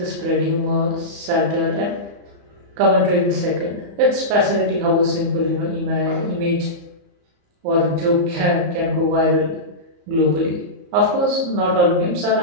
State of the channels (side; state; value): left; late; 34 ms